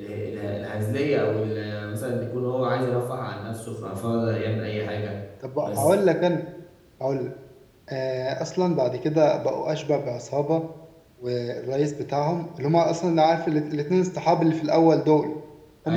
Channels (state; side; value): identical; both; correlation 1.00